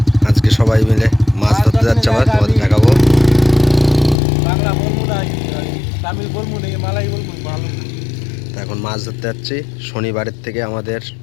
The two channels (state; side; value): drops out; right; at 4.2 s